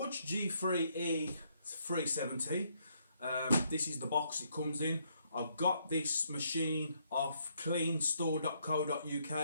G3E 370. This is the box it comes in. I've got this machine off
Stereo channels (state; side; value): inverted; both; correlation -0.72